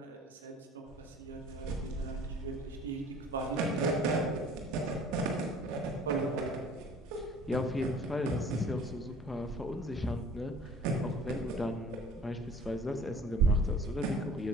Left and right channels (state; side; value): normal; both; correlation 0.48